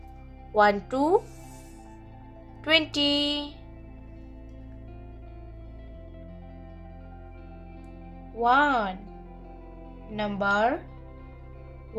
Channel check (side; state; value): both; identical; correlation 1.00